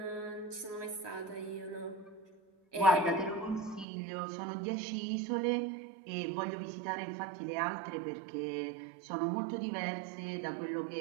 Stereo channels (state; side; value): drops out; left; at 3.9 s